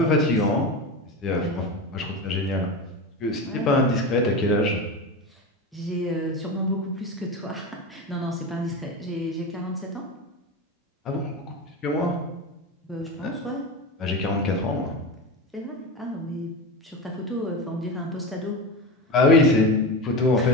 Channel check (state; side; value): normal; both; correlation 0.22